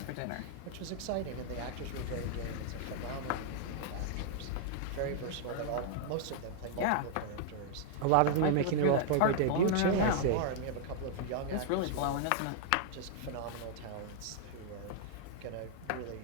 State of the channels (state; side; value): different; both; correlation -0.01